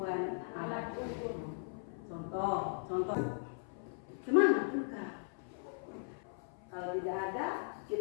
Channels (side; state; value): right; silent; 52 dB below the other